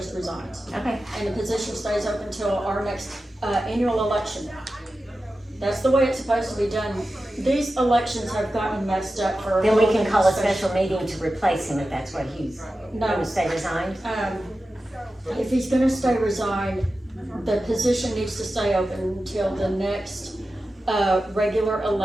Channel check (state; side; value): normal; both; correlation 0.93